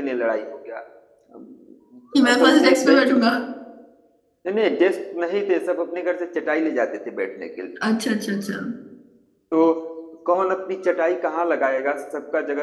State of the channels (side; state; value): both; identical; correlation 1.00